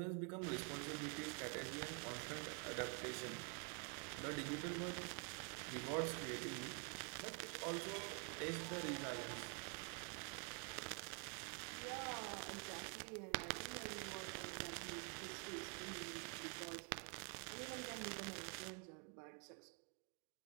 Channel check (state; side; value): quieter; left; 39.5 dB